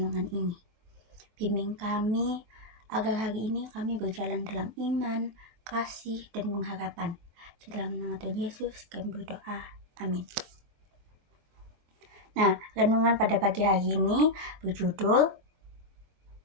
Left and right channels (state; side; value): late; left; 23 ms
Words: ini. Bimbing kami agar hari ini kami berjalan dalam iman, kasih, dan pengharapan. Di dalam nama Tuhan Yesus kami berdoa. Amin. Nah, renungan pada pagi hari ini berjudul